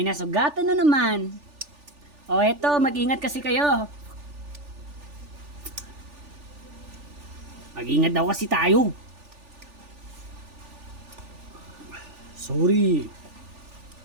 nasugatan na naman. O eto, mag-ingat kasi kayo. Mag-ingat daw kasi tayo. Sorry.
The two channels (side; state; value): left; late; 3.4 ms